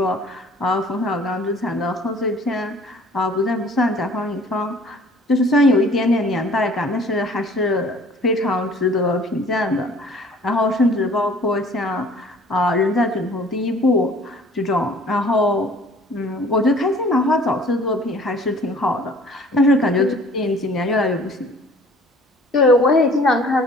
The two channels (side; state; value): both; normal; correlation 0.52